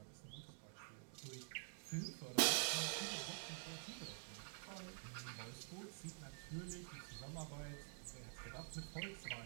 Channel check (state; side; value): silent; left; digital silence